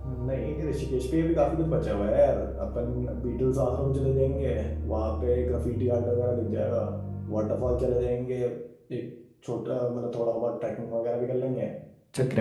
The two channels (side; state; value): both; identical; correlation 1.00